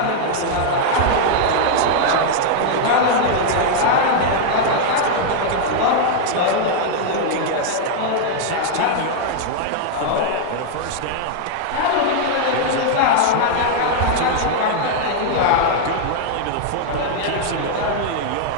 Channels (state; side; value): different; both; correlation -0.01